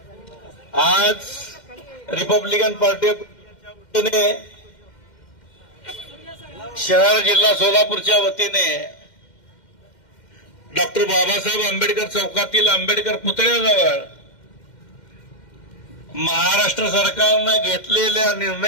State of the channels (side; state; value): right; late; 2.1 ms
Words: आज रिपब्लिकन पार्टीच्या वतीने शहर जिल्हा सोलापूरच्या वतीने डॉक्टर बाबासाहेब आंबेडकर चौकातील आंबेडकर पुतळ्याजवळ महाराष्ट्र सरकारने घेतलेल्या